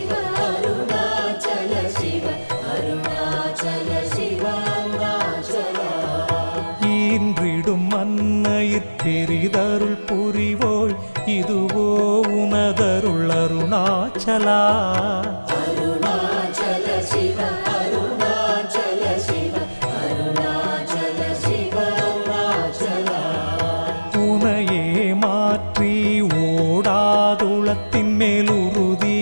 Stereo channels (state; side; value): inverted; both; correlation -1.00